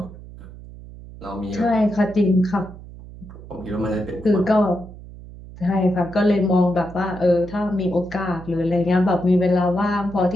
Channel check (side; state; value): right; noise; hum, 16 dB below the sound